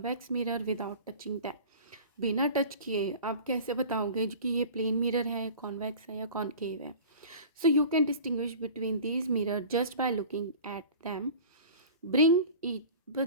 mirror without touching them. बिना टच किए आप कैसे बताओगे कि ये प्लेन मिरर है, कॉन्वेक्स है या कॉनकेव है। So you can distinguish between these mirror just by looking at them. Bring each, बस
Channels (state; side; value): inverted; both; correlation -0.39